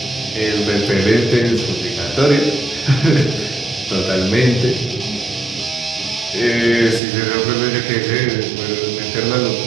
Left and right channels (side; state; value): left; drops out; at 7.0 s